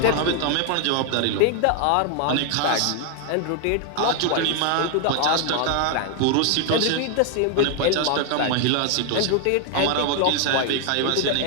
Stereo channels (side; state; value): both; different; correlation 0.00